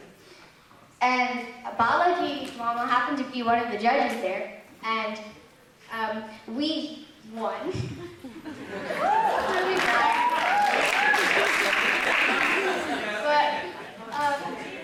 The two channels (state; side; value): identical; both; correlation 1.00